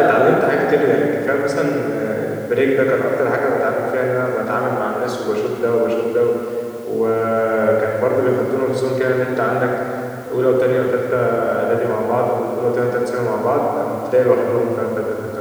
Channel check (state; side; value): identical; both; correlation 1.00